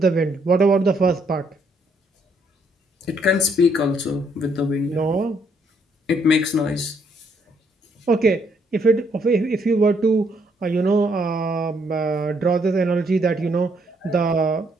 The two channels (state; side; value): normal; both; correlation 0.71